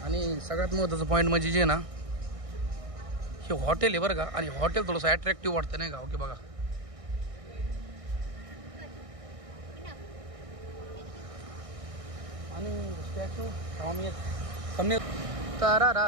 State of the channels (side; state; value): left; late; 1.6 ms